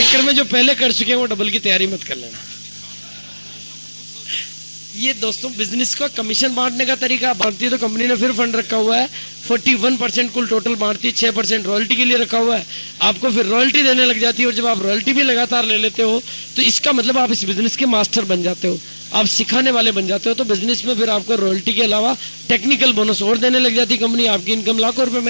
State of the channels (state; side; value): inverted; both; correlation -1.00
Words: में जो पहले कर चुके हैं वो डबल की तैयारी मत कर लेना। ये दोस्तों बिजनेस का कमीशन बांटने का तरीका बांटती है तो कंपनी ने फिर फंड रखा हुआ है 41% कुल टोटल बांटती है, 6% रॉयल्टी के लिए रखा हुआ है, आपको फिर रॉयल्टी देने लग जाती है। और जब आप रॉयल्टी भी लगातार ले लेते हो तो इसका मतलब आप इस बिजनेस के मास्टर बन जाते हो, आप सिखाने वाले बन जाते हो। तो बिजनेस में फिर आपको रॉयल्टी के अलावा टेक्निकल बोनस और देने लग जाती है कंपनी, आपकी इनकम लाखों रुपए